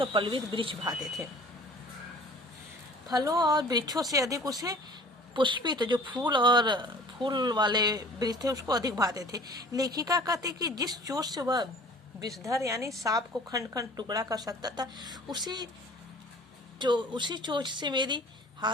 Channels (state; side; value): normal; both; correlation 0.47